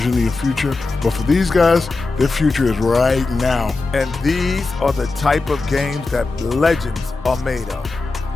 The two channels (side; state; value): right; quieter; 3.7 dB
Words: your future. But for these guys, their future is right now. And these are the type of games that legends are made of.